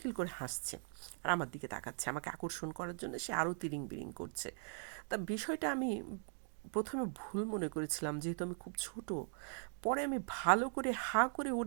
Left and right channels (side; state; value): left; silent; 51 dB below the other